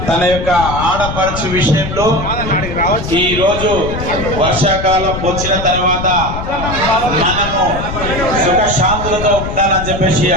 తన యొక్క ఆడపడుచు విషయంలో ఈ రోజు వర్షాకాలం వచ్చిన తర్వాత మనము సుఖ శాంతులతో ఉండాలని చెప్పేసి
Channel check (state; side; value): noise; left; rumble, 6 dB below the sound